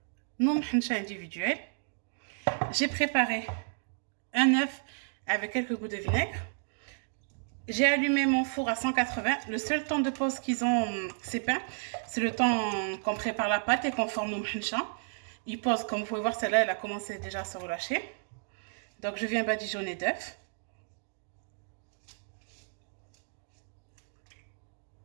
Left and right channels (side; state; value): left; silent; digital silence